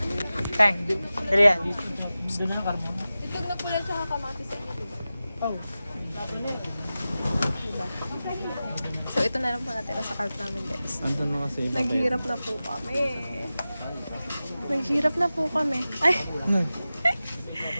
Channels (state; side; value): inverted; both; correlation -0.95